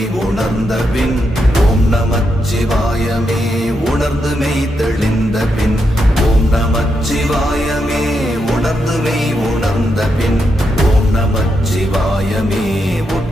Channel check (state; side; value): normal; both; correlation 0.83